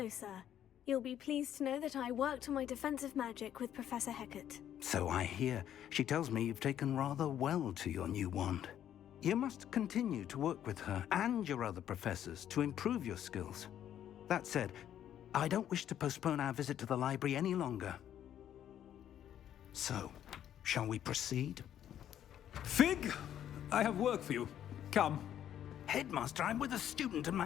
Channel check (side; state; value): right; quieter; 10.6 dB